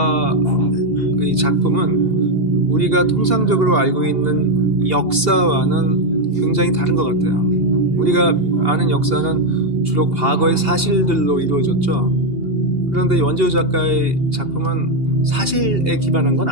작품은 우리가 통상적으로 알고 있는 역사와는 굉장히 다른 것 같아요. 우리가 아는 역사는 주로 과거의 사실들로 이루어졌죠. 그런데 원조 작가의 작품은 사실에 기반한 건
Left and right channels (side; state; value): left; late; 2.8 ms